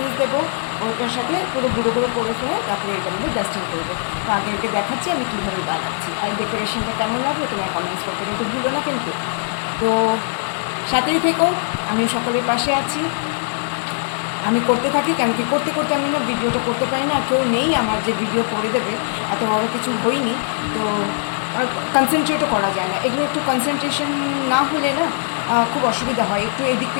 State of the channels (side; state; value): right; silent; digital silence